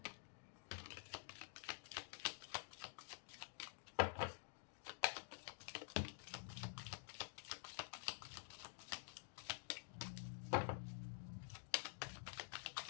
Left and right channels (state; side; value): silent; right; digital silence